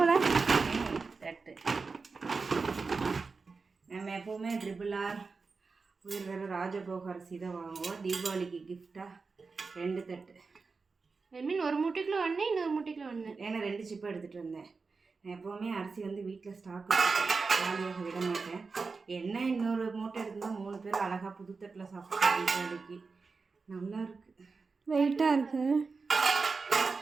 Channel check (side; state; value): left; quieter; 4.5 dB